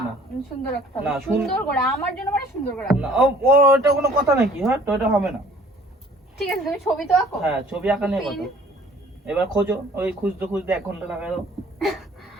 না। সুন্দর আঁকতে হবে, সুন্দর করে আমার জন্য, মানে সুন্দর করে না। ওটা কোনো কথা নাকি? হ্যাঁ, তো এটা হবে না। ঠিক আছে, তুমি ছবি তো আঁকো। হ্যাঁ, ছবি আঁকা নিয়ে কথা। এবার খোঁজো, ওই খুঁজতে খুঁজতে 1 ঘন্টা লাগাই দাও।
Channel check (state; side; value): normal; both; correlation 0.54